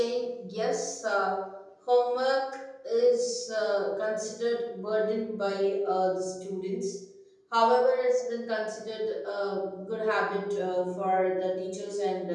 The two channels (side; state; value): both; identical; correlation 1.00